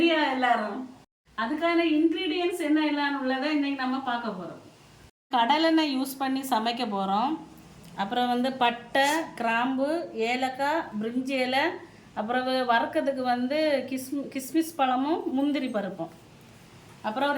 எல்லாரும்? அதுக்கான இன்க்ரீடியன்ஸ் என்ன எல்லாம் உள்ளதை இன்னைக்கு நம்ம பார்க்க போகிறோம். கடலெண்ணெய் யூஸ் பண்ணி சமைக்க போகிறோம். அப்புறம் பட்டை, கிராம்பு, ஏலக்காய், பிரிஞ்சி இலை, அப்புறம் வறுக்கிறதுக்கு கிஸ்மிஸ் பழமும் முந்திரி பருப்பும். அப்புறம்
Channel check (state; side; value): identical; both; correlation 1.00